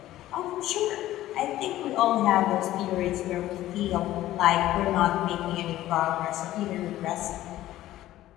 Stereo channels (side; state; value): right; quieter; 14.6 dB